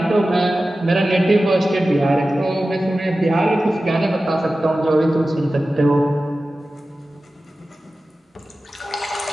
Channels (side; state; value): both; normal; correlation 0.95